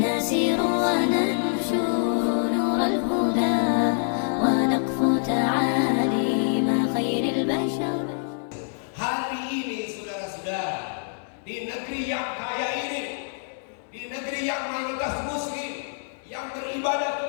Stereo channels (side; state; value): right; silent; digital silence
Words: نسير وننشر نور الهدى ونقفو تعاليم خير البشر. Hari ini saudara-saudara, di negeri yang kaya ini, di negeri yang mayoritas muslim, yang beribadah